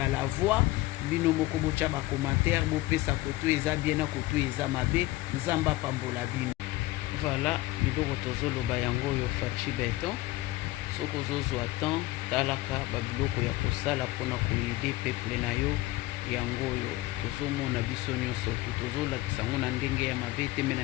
la voix bino moko botya bacommentaire bopesa koto eza bien na koto eza mabe nzamba pambola bino. Voilà biloko tozoloba yango oyo faci beton soki ozozwa temps talaka babiloko ya kosala mpona koyede peuple na yo yango oyo tozomona biso nyonso tu tozolakisa yango na ndenge ya mabe te me na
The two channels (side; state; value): right; quieter; 18.5 dB